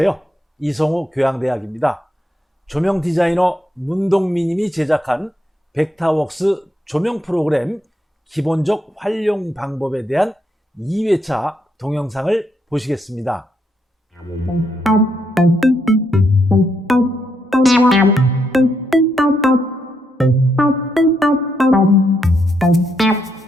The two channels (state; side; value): normal; both; correlation 0.78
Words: 이성우 교양대학입니다. 조명 디자이너 문동민님이 제작한 벡터웍스 조명 프로그램 기본적 활용 방법에 대한 2회차 동영상을 보시겠습니다.